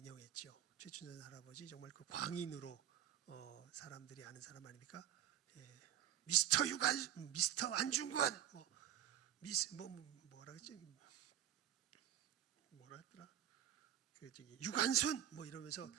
최춘선 할아버지 정말 그 광인으로 사람들이 아는 사람 아닙니까? 미스터 유관, 미스터 안중근, 뭐라 그랬지? 뭐라 했더라? 그 저기 유관순 뭐 이러면서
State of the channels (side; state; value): left; quieter; 10.9 dB